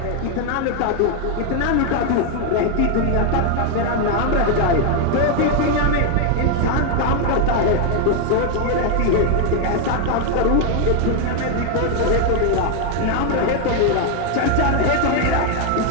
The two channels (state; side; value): different; both; correlation 0.00